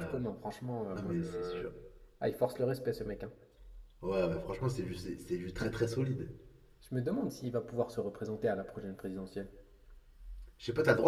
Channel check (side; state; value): both; identical; correlation 1.00